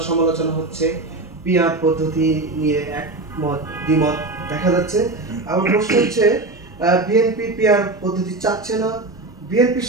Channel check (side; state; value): left; quieter; 3.1 dB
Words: সমালোচনা হচ্ছে, পিআর পদ্ধতি নিয়ে একমত দ্বিমত দেখা যাচ্ছে। আমার প্রশ্ন হচ্ছে, বিএনপি পিআর পদ্ধতি চাচ্ছে না। বিএনপির